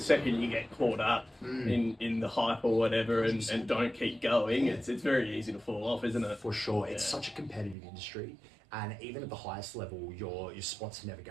you get caught up in the hype or whatever and don't keep going, it's very easy to fall off, isn't it? For sure. It's such a competitive industry, and even at the highest level, your spots are never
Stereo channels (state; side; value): drops out; left; at 7.8 s